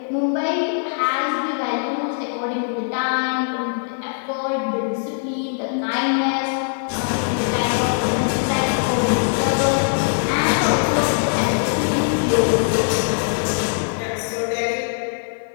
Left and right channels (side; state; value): right; silent; digital silence